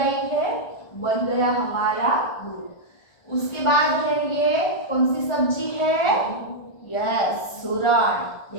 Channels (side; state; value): right; late; 1.4 ms